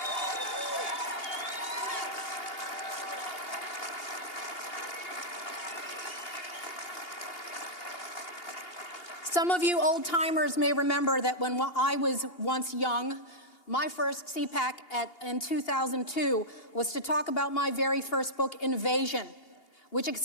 Some of you old-timers may remember that when I was once young, my first CPAC in 2002 was to talk about my very first book, Invasion, which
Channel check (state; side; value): late; right; 2.8 ms